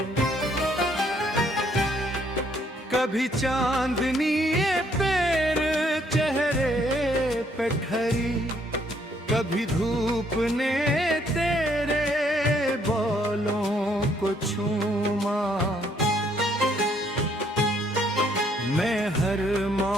कभी चांदनी पैर चेहरे पे ठहरी, कभी धूप ने तेरे बालों को छूमा। मैं हर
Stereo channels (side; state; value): both; normal; correlation 0.68